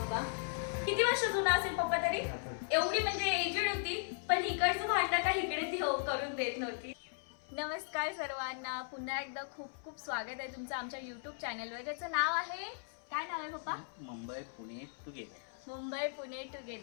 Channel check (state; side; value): silent; right; 53 dB below the other